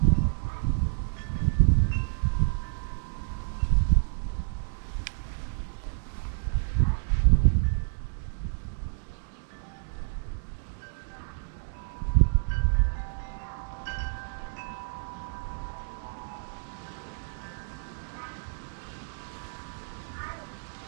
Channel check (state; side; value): silent; left; digital silence